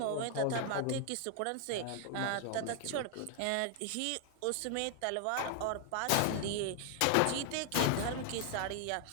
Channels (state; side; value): different; both; correlation 0.00